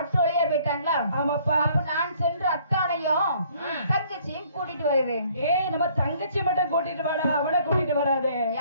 வழியா போயிட்டாங்களா? ஆமாப்பா. அப்ப நான் சென்று அத்தானையும் தங்கச்சியும் கூட்டிட்டு வருகிறேன். நம்ம தங்கச்சி மட்டும் கூட்டிட்டு வாடா, அவனை கூட்டிட்டு வராதே.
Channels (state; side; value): inverted; both; correlation -0.60